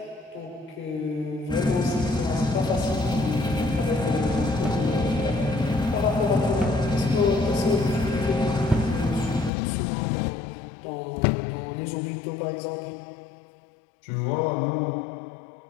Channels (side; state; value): right; drops out; at 9.5 s